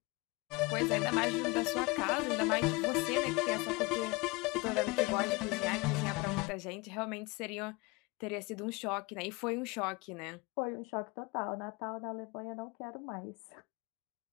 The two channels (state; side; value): quieter; right; 25.5 dB